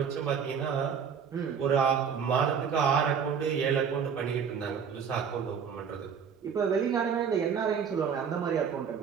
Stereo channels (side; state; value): left; quieter; 6.9 dB